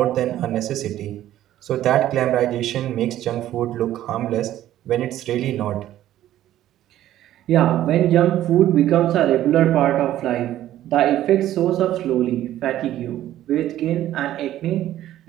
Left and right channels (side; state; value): left; quieter; 13.0 dB